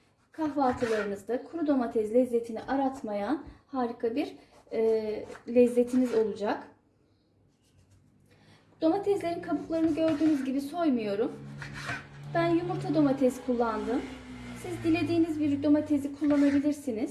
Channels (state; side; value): identical; both; correlation 1.00